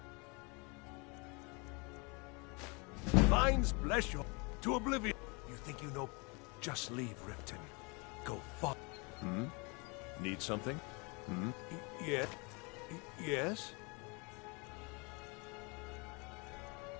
Divines bless you to oblivion. You think you know? Just leave Riften. Go fuck. Need something? Yeah. Yes?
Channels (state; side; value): quieter; right; 30.3 dB